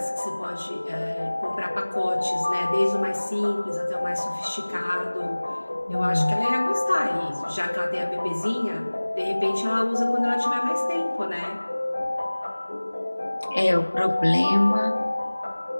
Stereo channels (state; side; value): inverted; both; correlation -1.00